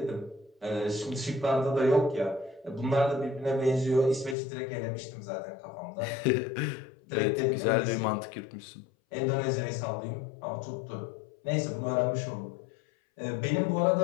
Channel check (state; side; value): drops out; right; at 4.4 s